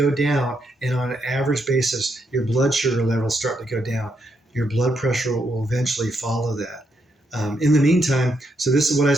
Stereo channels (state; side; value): normal; both; correlation 0.79